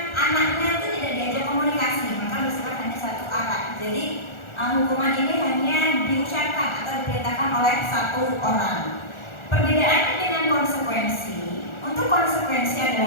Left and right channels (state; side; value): late; right; 1.4 ms